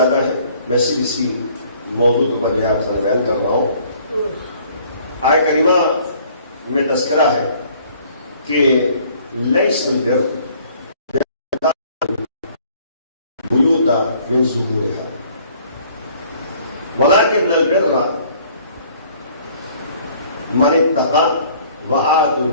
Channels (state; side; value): inverted; both; correlation -0.57